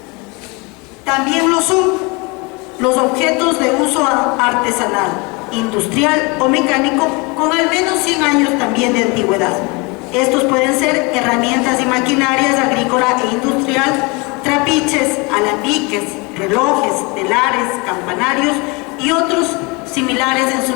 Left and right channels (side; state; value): right; quieter; 28.1 dB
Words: También lo son los objetos de uso artesanal, industrial o mecánico con al menos 100 años también de antigüedad. Estos pueden ser herramientas y maquinarias agrícola e industrial, trapiches, alambiques, relojes, telares, campanarios y otros similares en su